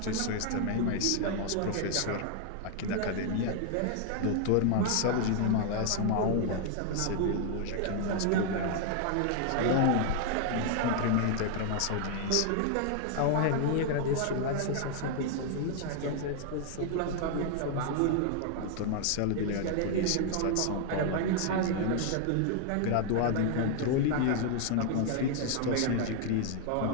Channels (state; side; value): different; both; correlation 0.00